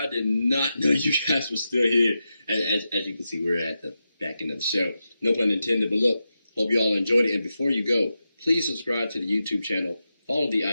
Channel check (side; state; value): both; inverted; correlation -0.89